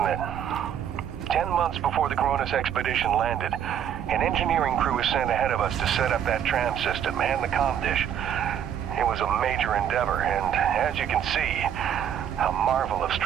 it? 10 months before the Cronus expedition landed, an engineering crew was sent ahead of us to set up that tram system and the comm dish. It was a major endeavor, and as you can see, a marvel of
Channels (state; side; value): quieter; left; 9.3 dB